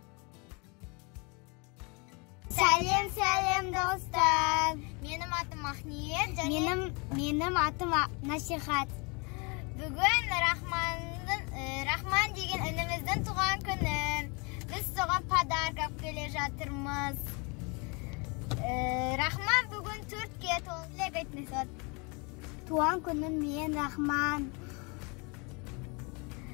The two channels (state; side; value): quieter; right; 30.9 dB